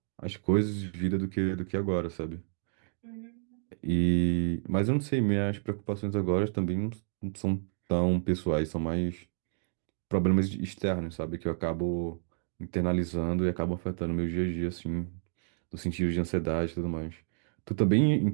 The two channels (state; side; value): silent; left; digital silence